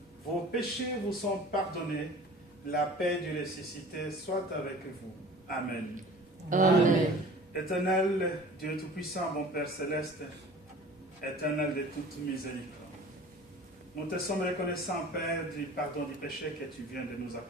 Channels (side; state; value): both; normal; correlation 0.43